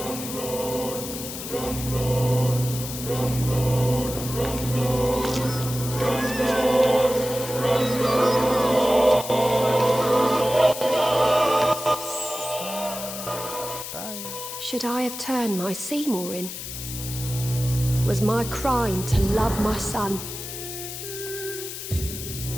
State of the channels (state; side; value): noise; left; hiss, 8 dB below the sound